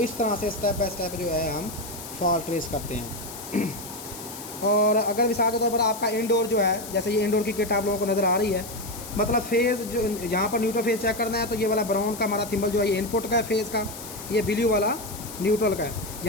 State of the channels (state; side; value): noise; left; hiss, 12 dB below the sound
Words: तरह से स्टेप बाय स्टेप जो है हम फॉल्ट ट्रेस करते हैं। और अगर मिसाल के तौर पर आपका इंडोर जो है, जैसे ये इंडोर की किट आप लोगों को नज़र आ रही है, मतलब फेज़ जो यहाँ पर न्यूट्रल फेज़ चेक करना है तो ये वाला ब्राउन का हमारा थिम्बल जो है ये इनपुट का है फेज़ का, ये ब्लू वाला न्यूट्रल का है।